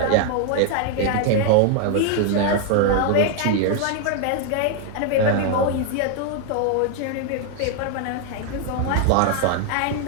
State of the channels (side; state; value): both; different; correlation 0.00